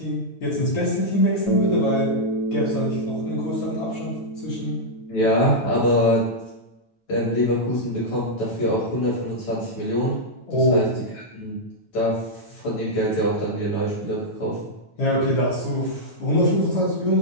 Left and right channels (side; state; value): right; late; 9.1 ms